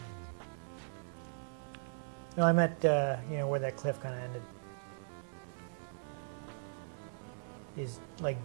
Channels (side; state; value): left; silent; 52 dB below the other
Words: No, I meant, where that cliff kind of ended. These, like,